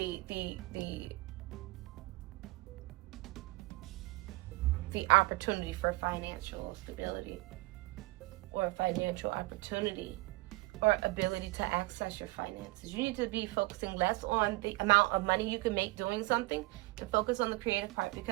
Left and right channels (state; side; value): quieter; left; 22.4 dB